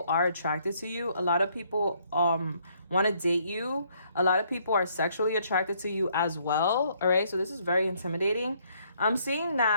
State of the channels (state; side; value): inverted; both; correlation -0.68